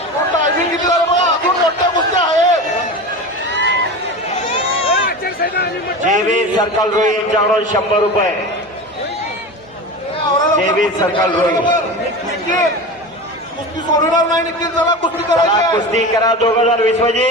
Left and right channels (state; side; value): normal; both; correlation 0.28